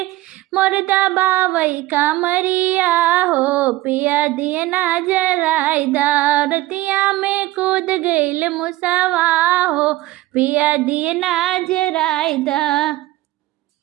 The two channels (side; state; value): left; quieter; 17.4 dB